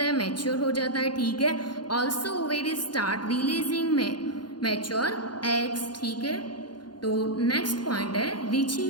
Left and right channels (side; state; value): right; late; 0.71 ms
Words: है? मैच्योर हो जाता है. ठीक है, also ovaries start releasing mature eggs. ठीक है, तो नेक्स्ट पॉइंट है